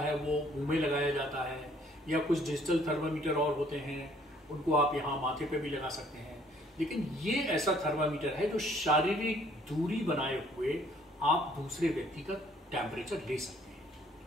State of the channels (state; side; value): normal; both; correlation 0.61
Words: है वो मुंह में लगाया जाता है, या कुछ डिजिटल थर्मामीटर और होते हैं, उनको आप यहाँ माथे पे भी लगा सकते हैं। लेकिन ये ऐसा थर्मामीटर है जो शारीरिक दूरी बनाए हुए आप दूसरे व्यक्ति का टेम्परेचर ले सकते हैं,